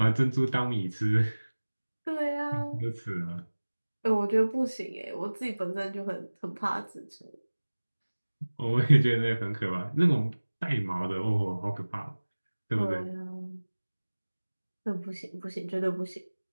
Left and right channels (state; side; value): inverted; both; correlation -1.00